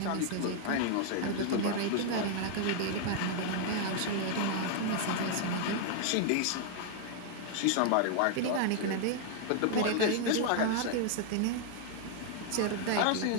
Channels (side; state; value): both; different; correlation 0.00